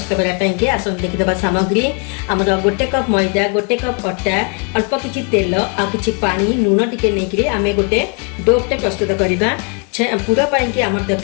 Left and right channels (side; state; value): right; quieter; 35.3 dB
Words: करने आसतु देखीदे सामग्री आमर गोटे कप मैदा, गोटे कप अटा, अल्प किछि तेल आ किछि पानी लुण टिके नहीं आम गोटे डोटे प्रस्तुत करवा। पूरा पाई आम